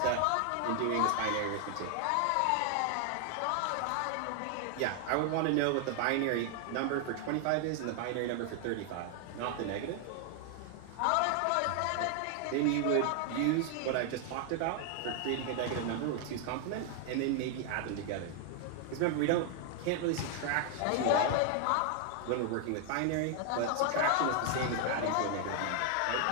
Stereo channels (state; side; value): different; both; correlation 0.00